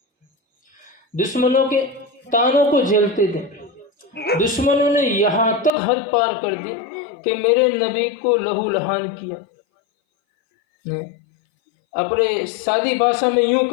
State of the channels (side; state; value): right; drops out; at 5.7 s